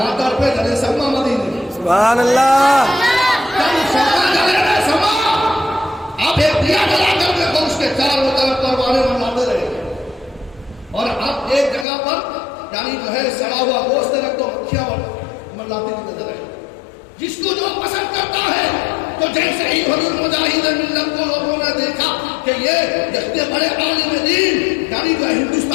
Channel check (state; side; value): drops out; right; at 11.9 s